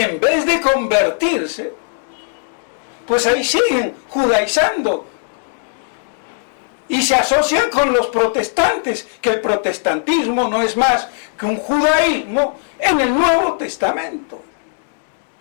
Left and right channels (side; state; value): right; silent; digital silence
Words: en vez de convertirse, pues ahí siguen judaizando. Y se asocian con los protestantes, que el protestantismo no es más que un judaísmo en el Nuevo Testamento.